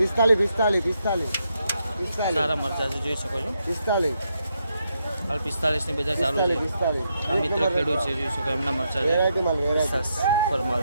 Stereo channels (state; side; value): inverted; both; correlation -0.80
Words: સારા મરચા છે, જોઈ શકો છો. 45 હાલ 45 ની બજાર ચાલુ છે. આ મિત્ર ખેડૂત છે, જોઈ શકો એમના મરચા છે. ફરમાલ